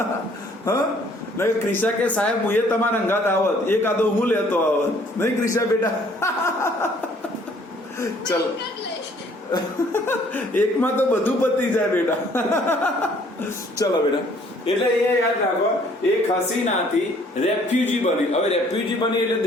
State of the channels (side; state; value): both; normal; correlation 0.60